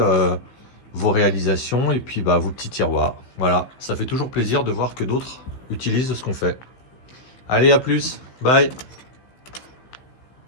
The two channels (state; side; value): late; right; 16 ms